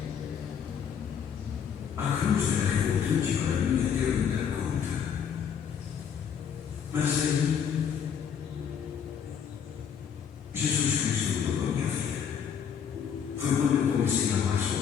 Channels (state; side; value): quieter; right; 7.6 dB